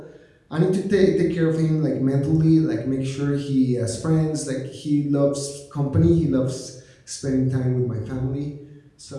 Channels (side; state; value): both; identical; correlation 1.00